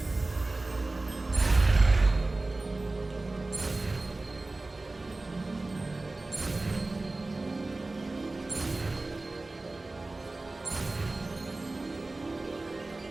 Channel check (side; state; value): left; quieter; 3.1 dB